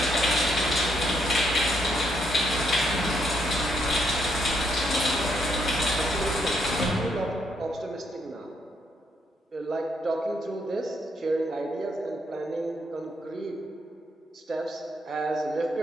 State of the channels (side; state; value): both; normal; correlation 0.75